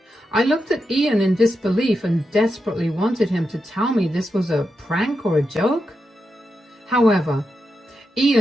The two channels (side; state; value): both; normal; correlation 0.87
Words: I looked at Ian in disbelief and desperately wanted him to tell me this was a prank or a joke. However,